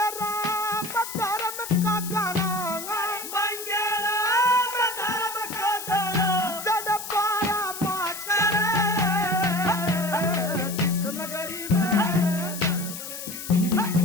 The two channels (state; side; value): noise; left; hiss, 9 dB below the sound